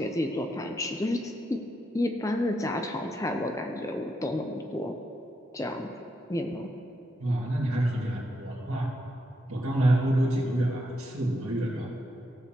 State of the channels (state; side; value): normal; both; correlation 0.81